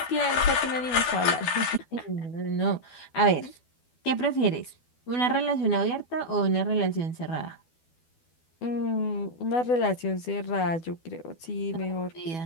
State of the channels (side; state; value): right; late; 12 ms